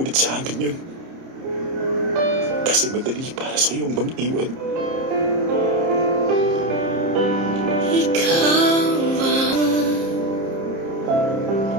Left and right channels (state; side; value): late; left; 30 ms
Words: sa amin yun. Kasi madali para sa iyong mang-iwan. Ikaw ba?